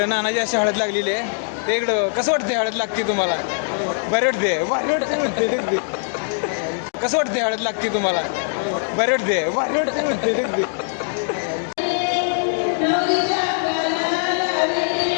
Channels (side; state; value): right; silent; digital silence